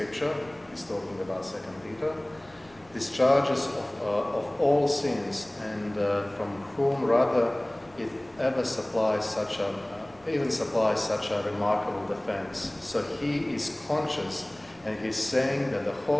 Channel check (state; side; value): noise; left; rumble, 29 dB below the sound